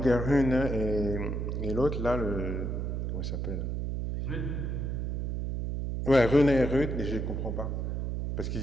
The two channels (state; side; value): noise; right; hum, 2 dB below the sound